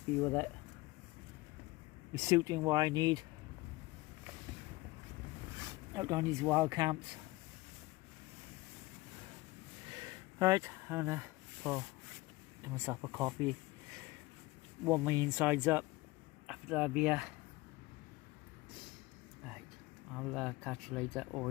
with it. It's suiting what I need out on these wild camps. Right, I'm gonna get myself a coffee, warm my insides up after that beer. Right, I'll catch you later or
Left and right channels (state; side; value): quieter; right; 20.7 dB